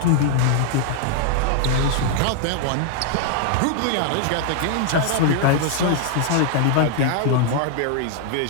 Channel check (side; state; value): both; different; correlation 0.00